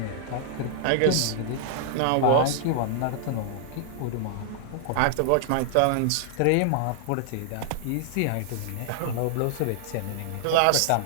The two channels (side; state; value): both; different; correlation -0.01